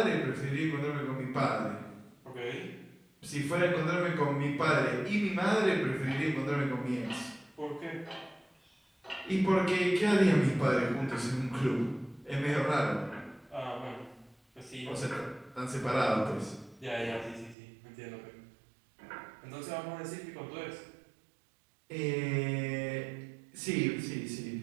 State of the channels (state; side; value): drops out; left; at 17.6 s